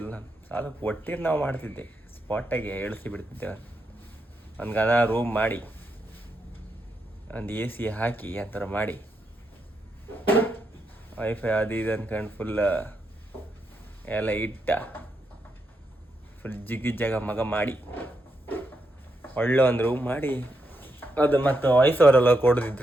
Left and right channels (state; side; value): normal; both; correlation 0.82